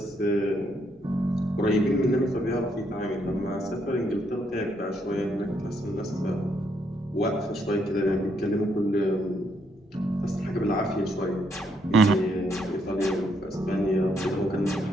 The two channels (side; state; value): both; normal; correlation 0.74